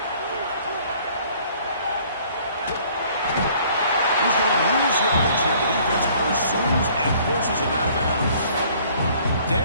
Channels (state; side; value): inverted; both; correlation -0.57